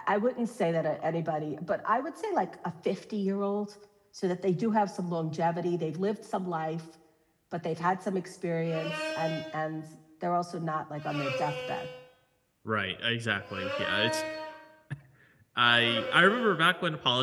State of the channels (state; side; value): identical; both; correlation 1.00